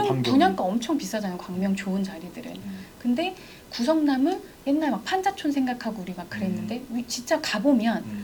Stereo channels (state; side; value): identical; both; correlation 1.00